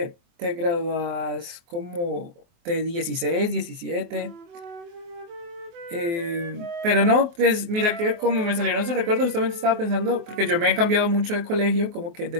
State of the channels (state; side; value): late; left; 24 ms